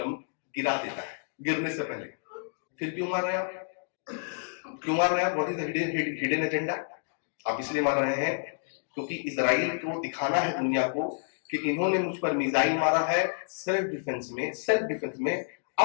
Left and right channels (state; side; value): silent; right; digital silence